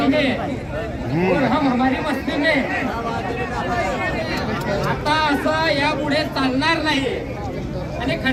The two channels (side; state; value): both; identical; correlation 1.00